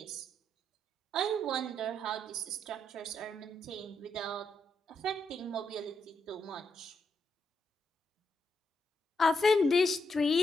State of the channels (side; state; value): both; normal; correlation 0.80